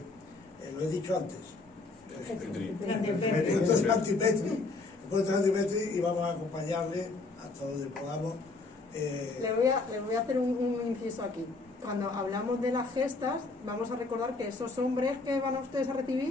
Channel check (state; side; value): quieter; right; 3.6 dB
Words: he dicho antes. Puerto Santipetri, y vamos a acompañarle hasta donde podamos. Le voy a hacer un inciso aquí. Cuando hablamos de las gestas, vamos a recordar que esos hombres que van a ustedes a